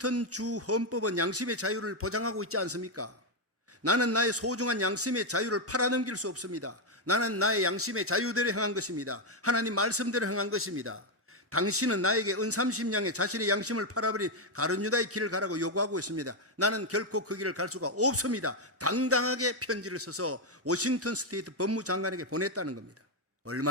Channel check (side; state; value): both; normal; correlation 0.03